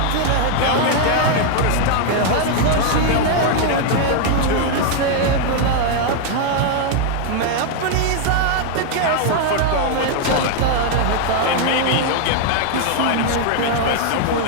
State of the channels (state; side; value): different; both; correlation 0.00